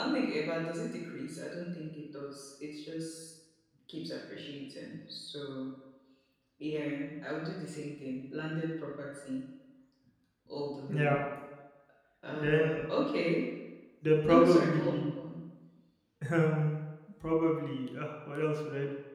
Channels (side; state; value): both; identical; correlation 1.00